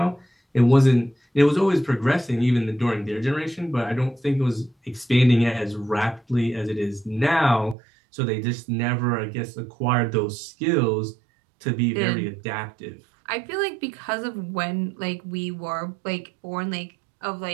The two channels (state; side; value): drops out; left; at 7.8 s